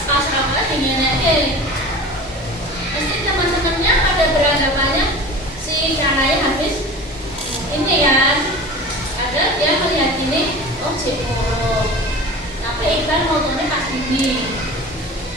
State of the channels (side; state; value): both; normal; correlation 0.36